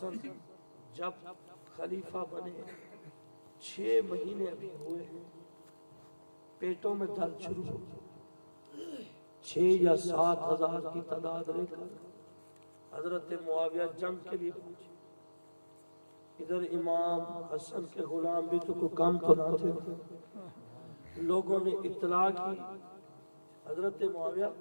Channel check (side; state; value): both; inverted; correlation -1.00